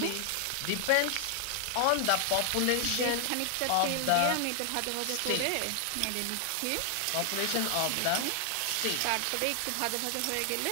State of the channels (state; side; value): different; both; correlation 0.00